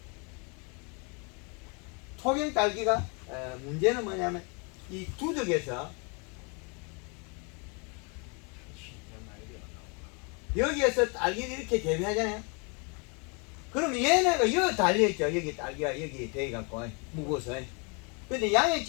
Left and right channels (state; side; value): quieter; right; 33.6 dB